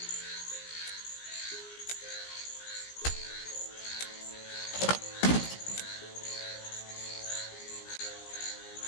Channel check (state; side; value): late; right; 17 ms